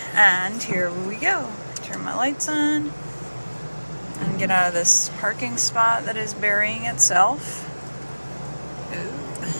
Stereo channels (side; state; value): both; inverted; correlation -1.00